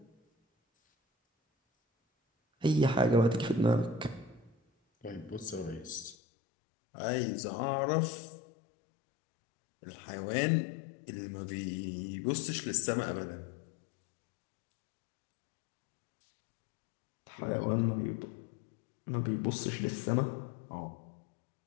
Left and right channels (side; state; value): right; drops out; at 6.2 s